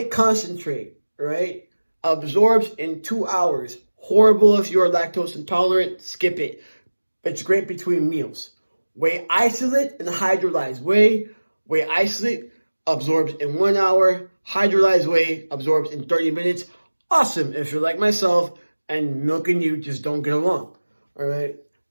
concentrate, right, absorbs in 2 hours. Horrible if you're lactose intolerant, skip it. It's great between meals. Whey isolate and hydrolyzed whey. Whey isolate absorbs in 1 hour. Hydrolyzed whey absorbs in 30 minutes. Awesome if you're like myself and milk and you just don't get along, all right?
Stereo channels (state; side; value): inverted; both; correlation -1.00